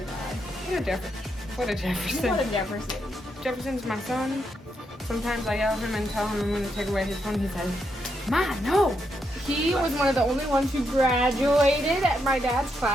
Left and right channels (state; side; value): normal; both; correlation 0.81